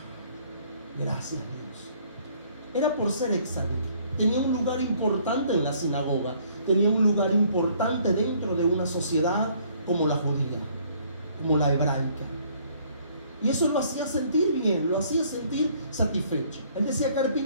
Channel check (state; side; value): inverted; both; correlation -0.61